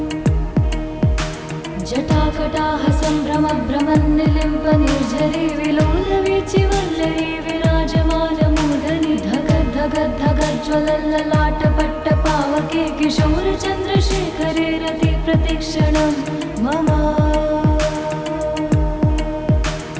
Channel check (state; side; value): identical; both; correlation 1.00